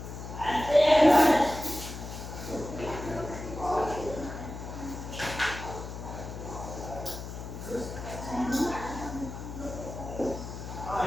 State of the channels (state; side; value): noise; left; hum, 9 dB below the sound